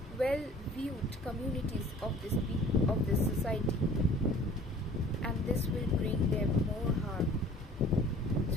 well viewed communities of this society, and this will bring them more harm.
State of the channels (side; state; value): both; normal; correlation 0.49